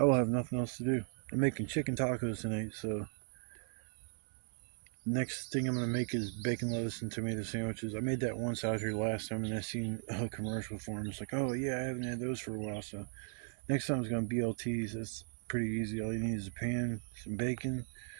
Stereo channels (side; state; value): left; silent; 53 dB below the other